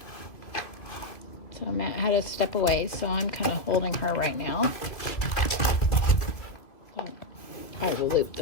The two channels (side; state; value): right; late; 2.6 ms